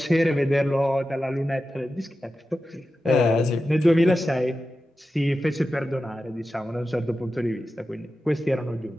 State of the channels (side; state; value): both; normal; correlation 0.92